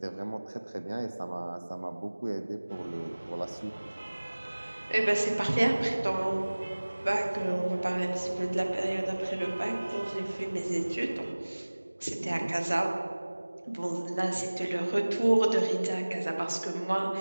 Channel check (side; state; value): both; inverted; correlation -1.00